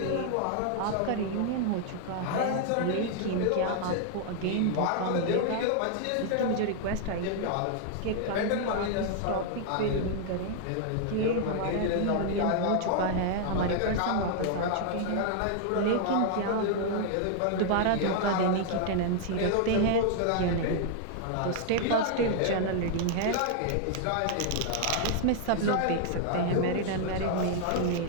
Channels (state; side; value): different; both; correlation 0.00